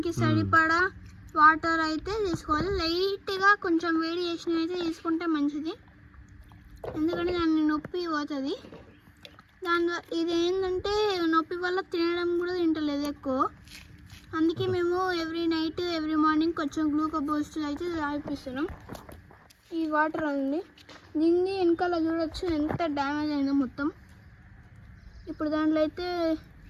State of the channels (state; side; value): identical; both; correlation 1.00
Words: సరిపడా వాటర్ అయితే తీసుకోవాలి. లైట్గా కొంచెం వేడి చేసిన అయితే తీసుకుంటే మంచిది, ఎందుకంటే దాన్ని నొప్పి పోతుంది. ఇది ఏంటంటే నొప్పి వల్ల తినడం కూడా తింటలేదు ఎక్కువ. అందుకే మేము ఎవ్రీ నైట్ ఎవ్రీ మార్నింగ్ కొంచెం గ్లూకోజ్ బూస్ట్ అయితే తాగిపిస్తున్నాం. ఈ వాటర్ అండి, దీన్ని వెనకాల చూడొచ్చు ఎంత డ్యామేజ్ అయిందో మొత్తం. ఇప్పుడు దాంట్లో అయితే